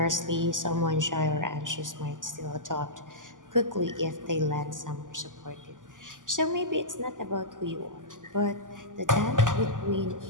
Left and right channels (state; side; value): late; left; 0.88 ms